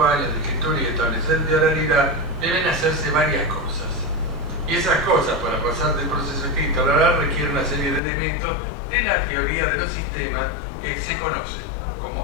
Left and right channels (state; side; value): drops out; right; at 8.0 s